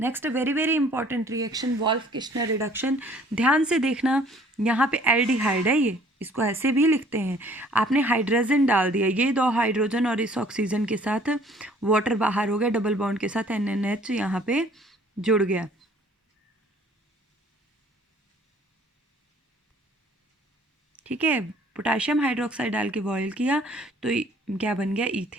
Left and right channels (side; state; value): both; normal; correlation 0.56